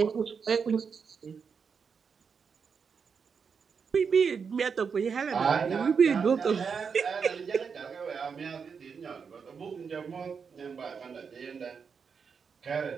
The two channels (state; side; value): quieter; left; 6.0 dB